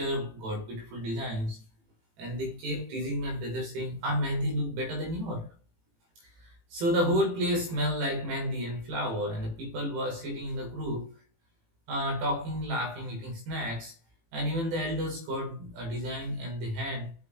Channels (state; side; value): late; left; 18 ms